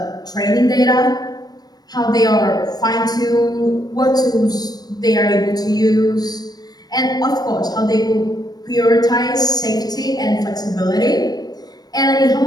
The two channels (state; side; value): late; right; 0.19 ms